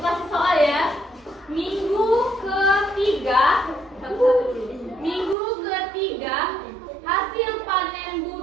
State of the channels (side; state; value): left; drops out; at 5.4 s